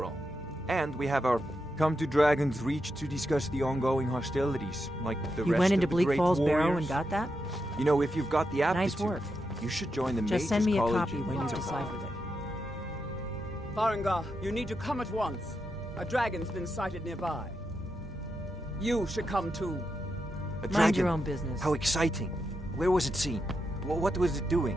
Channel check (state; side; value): normal; both; correlation 0.85